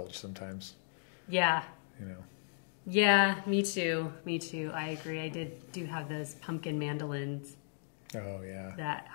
sometimes. Yeah. Yeah, me too. I agree. I do have those pumpkin mandolins. Oh, yeah. That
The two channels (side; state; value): right; silent; digital silence